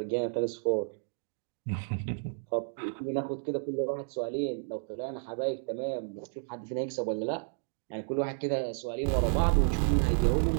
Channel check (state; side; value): silent; left; digital silence